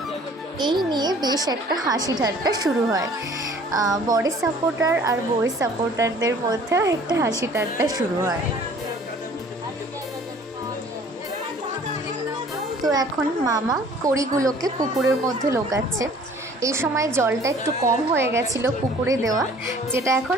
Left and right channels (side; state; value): both; normal; correlation 0.52